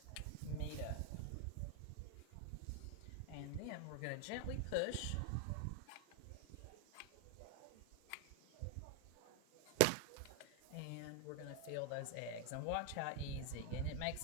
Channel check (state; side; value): different; both; correlation 0.00